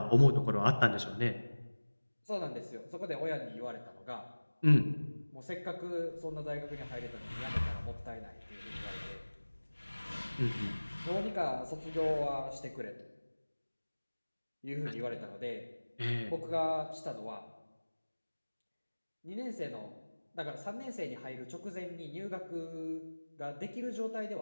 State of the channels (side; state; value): both; inverted; correlation -1.00